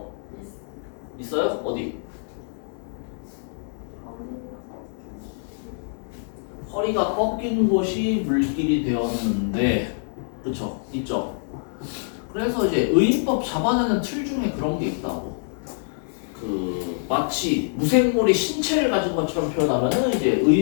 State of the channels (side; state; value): right; silent; digital silence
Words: 있어요? 어디? 허리가 꺾인 곳이 물길이 되었는데 그쵸? 있죠? 그래서 이제 의인법 잡아내는 틀 중에 그런 게 있다고. 그 마치 무생물이 신체를 가진 것처럼 표현하면은 이제